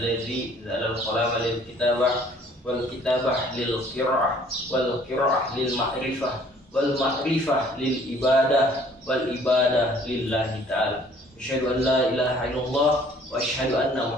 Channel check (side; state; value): both; normal; correlation 0.57